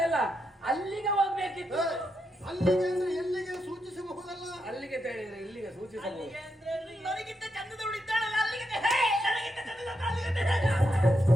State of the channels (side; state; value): both; normal; correlation 0.83